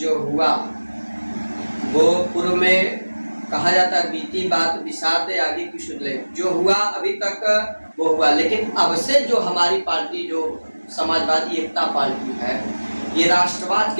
हुआ वो पूर्व में कहा जाता है बीती बात विषाद आगे की सुन ले। जो हुआ अभी तक वो हुआ, लेकिन अब से जो हमारी पार्टी जो समाजवादी एकता पार्टी है, ये राष्ट्रवाद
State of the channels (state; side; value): inverted; both; correlation -1.00